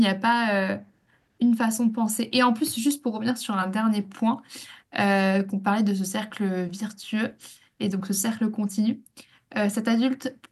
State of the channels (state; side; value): identical; both; correlation 1.00